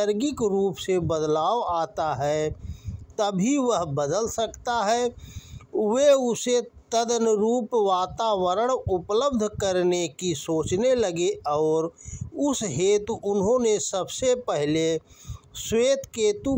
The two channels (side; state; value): both; identical; correlation 1.00